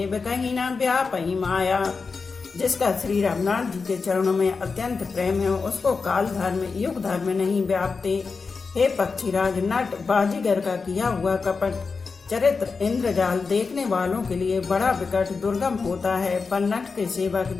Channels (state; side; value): quieter; right; 4.7 dB